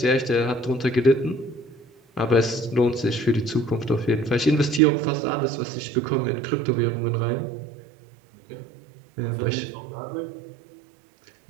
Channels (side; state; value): left; drops out; at 4.8 s